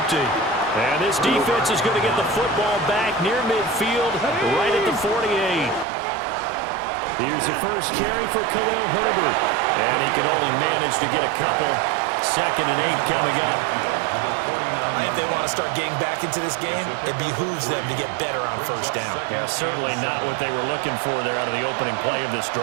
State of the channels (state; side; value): drops out; left; at 5.9 s